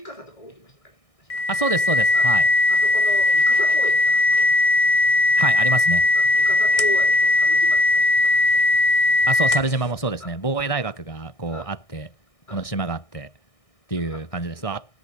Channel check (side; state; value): right; late; 1.6 ms